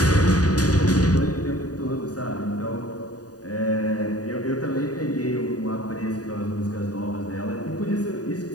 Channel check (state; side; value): late; right; 0.68 ms